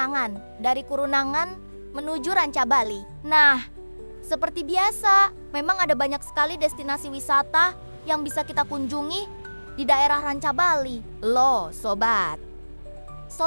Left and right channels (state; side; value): inverted; both; correlation -1.00